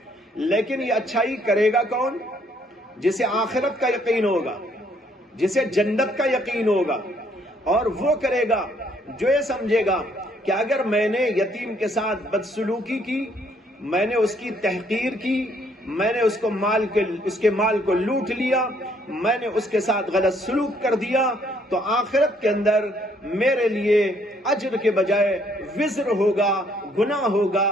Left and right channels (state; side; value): normal; both; correlation 0.67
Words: لیکن یہ اچھائی کرے گا کون؟ جسے آخرت کا یقین ہوگا، جسے جنت کا یقین ہوگا، اور وہ کرے گا جو یہ سمجھے گا کہ اگر میں نے یتیم کے ساتھ بدسلوکی کی، میں نے اس کی تحقیر کی، میں نے اس کے مال کو لوٹ لیا، میں نے اس کے ساتھ غلط سلوک کر دیا، تو آخرت کے اندر میرے لیے اجر کے بجائے وزر ہوگا، گناہ ہوگا،